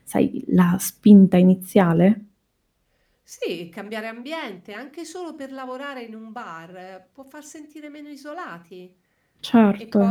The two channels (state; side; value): identical; both; correlation 1.00